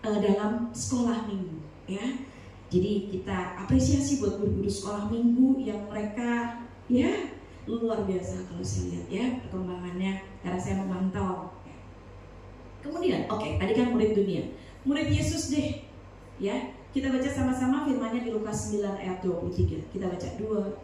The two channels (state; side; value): identical; both; correlation 1.00